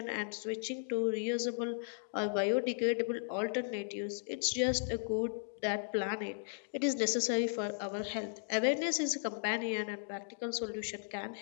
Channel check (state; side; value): silent; right; digital silence